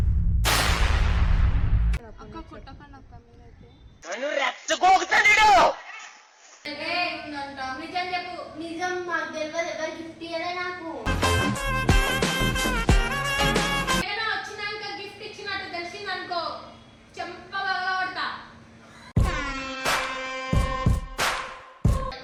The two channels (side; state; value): both; identical; correlation 1.00